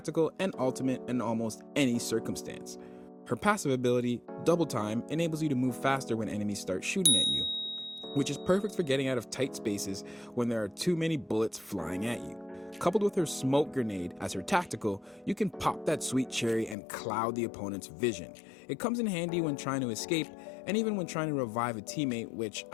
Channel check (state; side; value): drops out; right; at 16.8 s